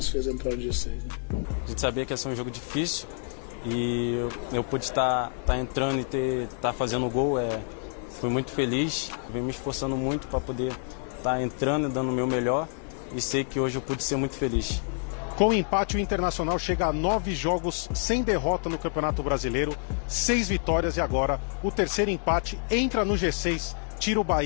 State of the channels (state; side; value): silent; right; 56 dB below the other